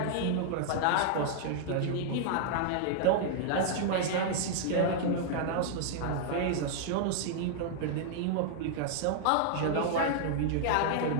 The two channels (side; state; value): both; different; correlation -0.01